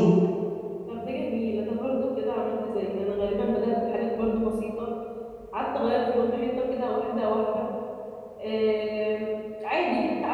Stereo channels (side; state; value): both; identical; correlation 1.00